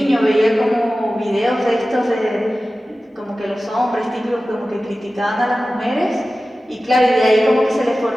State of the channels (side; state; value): both; normal; correlation 0.95